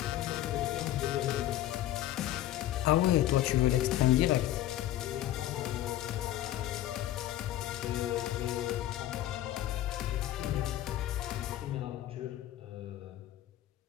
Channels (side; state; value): right; quieter; 13.5 dB